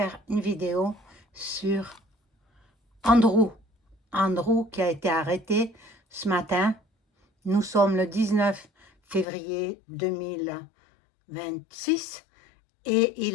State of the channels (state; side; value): drops out; right; at 9.2 s